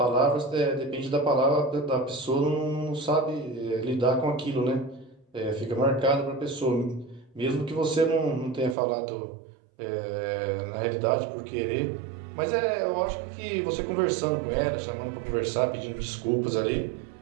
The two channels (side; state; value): left; drops out; at 8.8 s